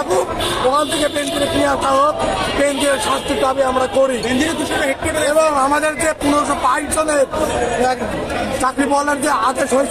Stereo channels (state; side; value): identical; both; correlation 1.00